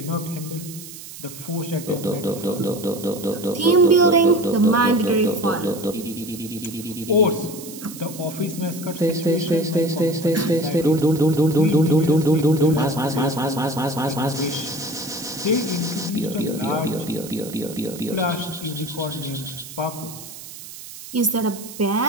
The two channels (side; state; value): right; noise; hiss, 14 dB below the sound